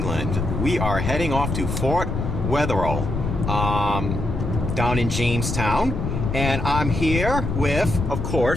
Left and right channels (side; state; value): left; noise; rumble, 3 dB below the sound